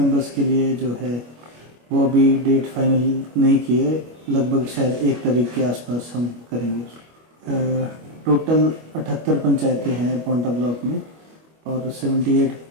के लिए जो है वो अभी डेट फाइनल नहीं की है, लगभग शायद 1 तारीख के आसपास हम करेंगे। टोटल 78 पंचायतें हैं पांवटा ब्लॉक में और 78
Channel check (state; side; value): late; left; 25 ms